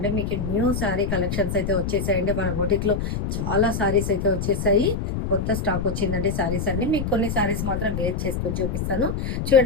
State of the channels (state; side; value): noise; left; rumble, 2 dB below the sound